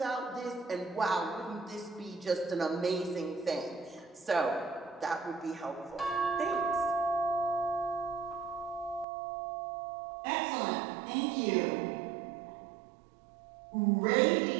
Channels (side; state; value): left; drops out; at 9.1 s